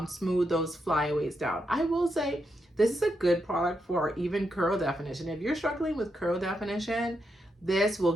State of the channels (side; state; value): both; normal; correlation 0.83